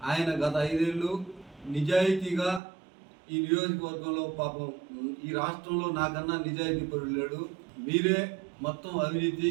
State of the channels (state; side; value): drops out; left; at 2.6 s